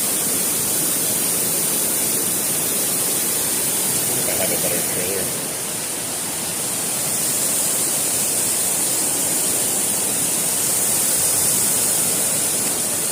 think I have a better trailer.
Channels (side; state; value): both; identical; correlation 1.00